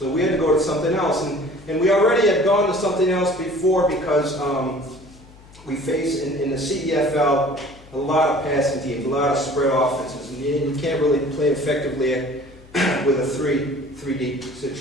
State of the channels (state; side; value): noise; left; hum, 23 dB below the sound